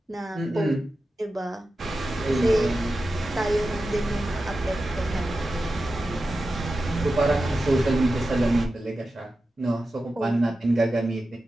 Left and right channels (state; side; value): normal; both; correlation 0.92